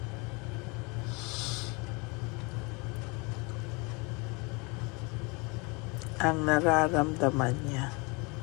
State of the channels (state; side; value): quieter; right; 29.0 dB